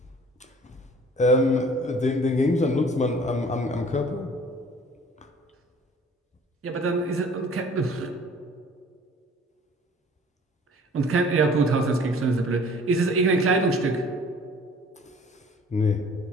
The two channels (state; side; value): normal; both; correlation 0.51